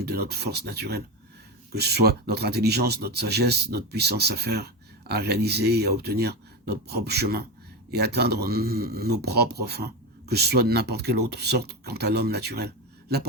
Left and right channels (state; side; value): normal; both; correlation 0.17